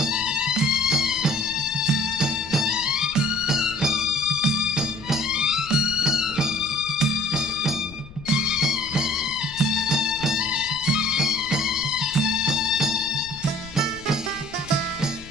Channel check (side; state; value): left; noise; rumble, 18 dB below the sound